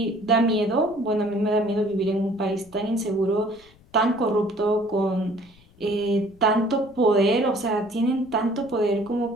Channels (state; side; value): noise; left; rumble, 28 dB below the sound